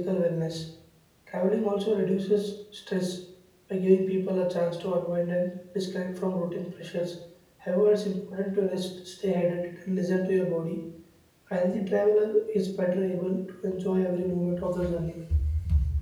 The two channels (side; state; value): both; identical; correlation 1.00